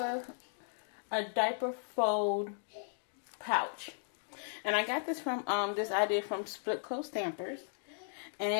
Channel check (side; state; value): right; silent; digital silence